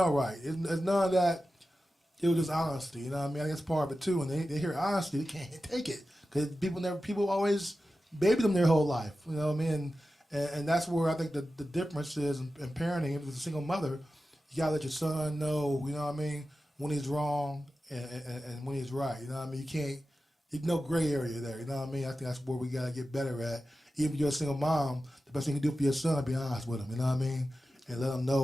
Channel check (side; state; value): both; normal; correlation 0.93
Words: right. It's none of that. It was just honesty, you know what I mean? I guess part of it too. And they hear honesty, they can't take it because people always baby them their whole life, you know what I mean? And that's where I think the difference is in parenting. If it's a single mother, you gotta let your son know, you know what I mean, when he's wrong and when he's right. You know what I mean? You can't. There's no gray area there. You know what I mean? I think that's where we gotta get better at. Even if you're a single mom, the best thing you can do for your son is be honest with him. You know what I mean? And let him